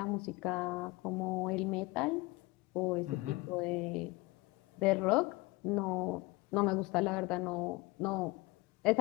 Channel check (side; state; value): right; quieter; 23.4 dB